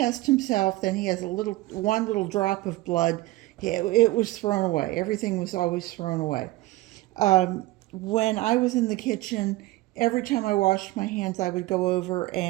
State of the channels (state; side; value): quieter; left; 18.7 dB